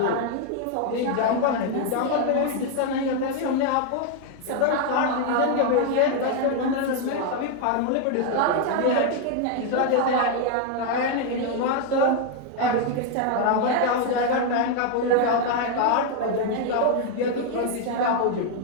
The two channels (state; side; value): different; both; correlation 0.01